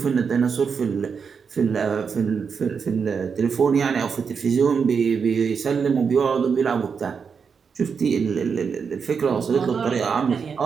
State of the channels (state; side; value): quieter; left; 6.0 dB